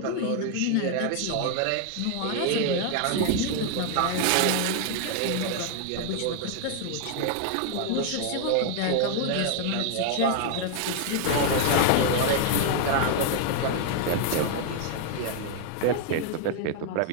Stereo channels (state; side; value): different; both; correlation 0.00